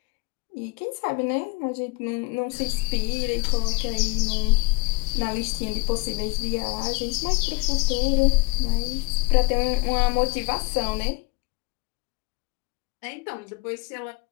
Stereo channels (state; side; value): quieter; right; 28.3 dB